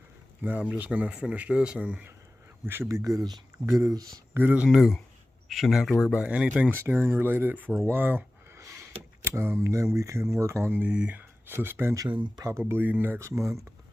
now I'm just gonna finish this and we should be good as new. Shouldn't have to worry about anything steering related for a while. Then we can work on the suspension probably next month.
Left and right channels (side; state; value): both; normal; correlation 0.97